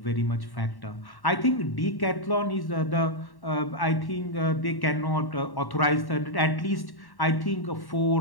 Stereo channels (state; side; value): late; right; 1.1 ms